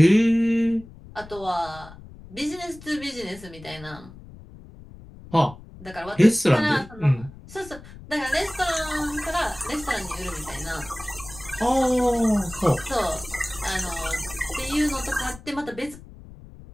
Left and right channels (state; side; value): noise; left; rumble, 18 dB below the sound